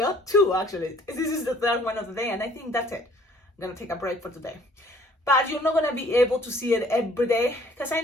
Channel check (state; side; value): normal; both; correlation 0.58